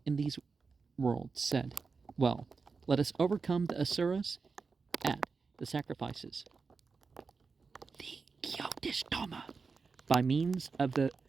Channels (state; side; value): quieter; left; 4.7 dB